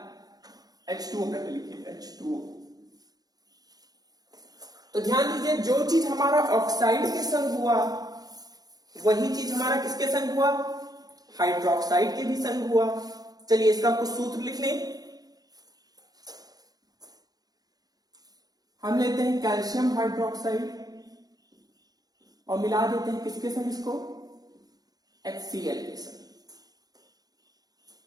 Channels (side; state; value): left; late; 0.19 ms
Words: H2O पहले लिखिए, H2O। तो ध्यान दीजिए, जो चीज हमारा ऑक्साइड के संग हुआ वही चीज हमारा किसके संग हुआ, हाइड्रोक्साइड के भी संग हुआ। चलिए इसका कुछ सूत्र लिख लें। हम लेते हैं कैल्शियम हाइड्रोक्साइड और मिला देते हैं किसके संग, इसको HCl के संग,